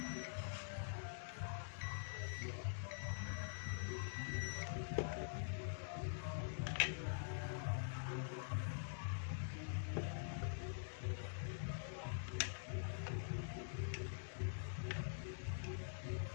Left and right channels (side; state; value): right; silent; digital silence